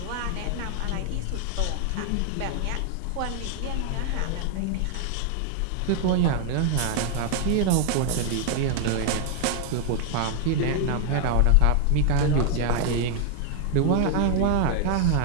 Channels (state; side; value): different; both; correlation 0.00